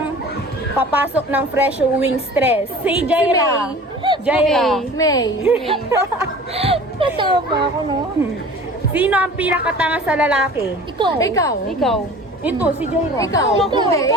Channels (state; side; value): normal; both; correlation 0.42